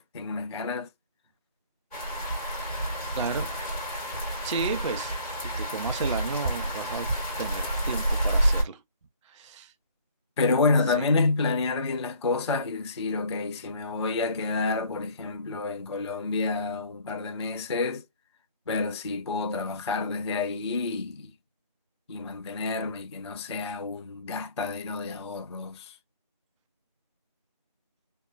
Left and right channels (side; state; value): both; inverted; correlation -0.54